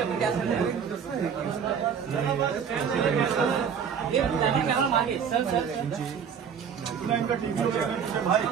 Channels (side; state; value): left; quieter; 7.3 dB